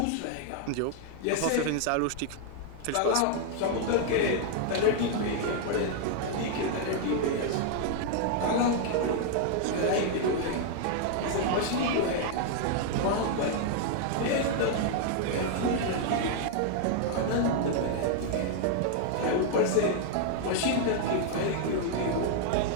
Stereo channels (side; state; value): both; different; correlation 0.00